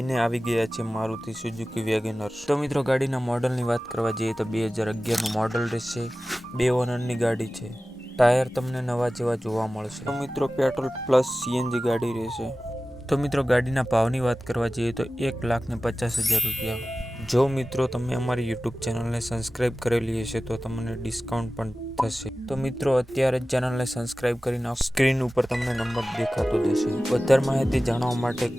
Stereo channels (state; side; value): normal; both; correlation 0.96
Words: આવી ગયા છે મારુતિ સુઝુકી વેગેનર। તો મિત્રો ગાડીના મોડલની વાત કરવા જઈએ તો 2011નું મોડલ રહેશે, 2 ઓનરની ગાડી છે। ટાયર તમને નવા જેવા જોવા મળશે। તો મિત્રો પેટ્રોલ પ્લસ સીએનજી ગાડી રહેશે। તો મિત્રો ગાડીના ભાવની વાત કરવા જઈએ તો 1,50,000 રૂપિયા। જો મિત્રો તમે અમારી યુટ્યુબ ચેનલને સબસ્ક્રાઈબ કરેલી હશે તો તમને ડિસ્કાઉન્ટ પણ થશે। તો મિત્રો અત્યારે જ ચેનલને સબસ્ક્રાઈબ કરી નાખો, સ્ક્રીન ઉપર તમને નંબર દેખાતો જશે। વધારે માહિતી જાણવા માટે